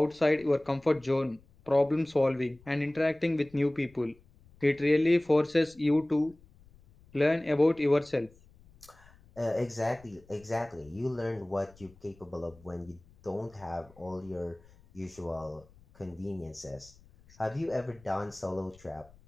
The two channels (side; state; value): left; noise; rumble, 26 dB below the sound